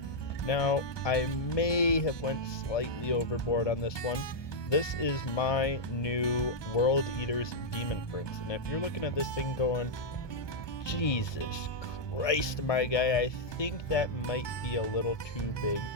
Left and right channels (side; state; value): right; late; 1.2 ms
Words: Now, I may have went slightly overboard on this one. This is my new World Eater's Demon Prince, and if you're looking at this thing going, Jesus Christ, my guy, I think that might be a little too big